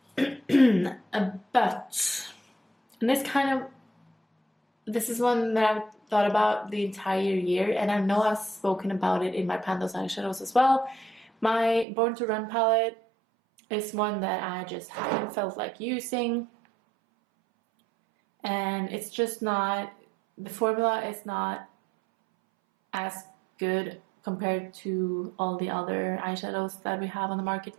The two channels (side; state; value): left; drops out; at 11.9 s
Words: But, and this is one that I've thought about the entire year, and I know I've spoken about it in my Pandos eyeshadows as well. My Born to Run palette is one that I just haven't felt like using, and it's just not, the formula is not as good compared to all the other eyeshadows that we have on the market